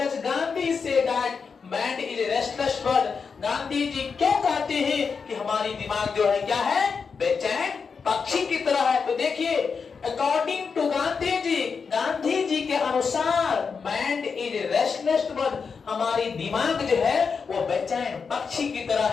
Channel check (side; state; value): right; quieter; 5.5 dB